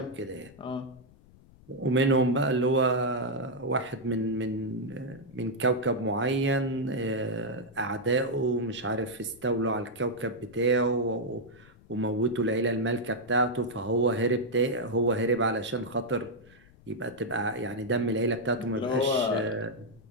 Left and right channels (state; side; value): noise; left; rumble, 25 dB below the sound